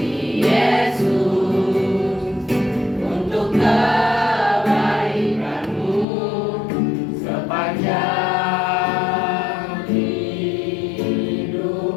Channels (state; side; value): drops out; right; at 6.1 s